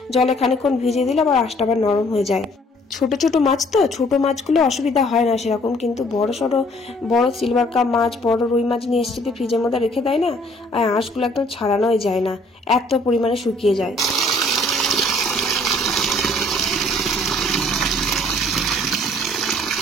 জলে খানিকক্ষণ ভিজিয়ে দিলাম, আর আঁশটা আবার নরম হয়ে যায়। ছোট ছোট মাছ তো, ছোট মাছগুলো অসুবিধা হয় না সেরকম, কিন্তু বড় সড়ো বড় সিলভার কাপ মাছ, বড় রুই মাছ নিয়ে এসে যদি ফ্রিজের মধ্যে রেখে দেয় না, আর আঁশগুলো একদম ছাড়ানোই যায় না, এত পরিমাণে শুকিয়ে যায়।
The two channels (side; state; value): both; normal; correlation 0.59